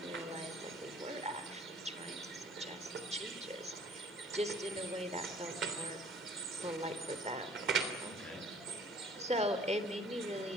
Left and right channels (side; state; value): right; noise; hiss, 30 dB below the sound